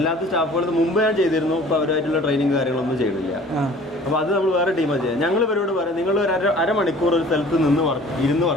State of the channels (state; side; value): normal; both; correlation 0.49